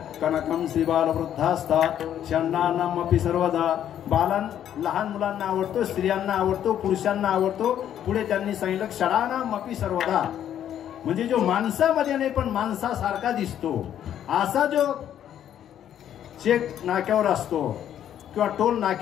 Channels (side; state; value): right; quieter; 10.4 dB